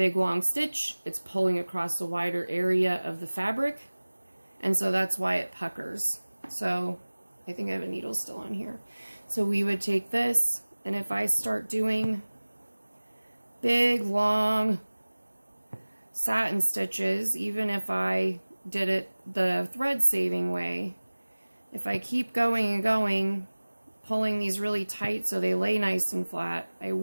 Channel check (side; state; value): both; inverted; correlation -1.00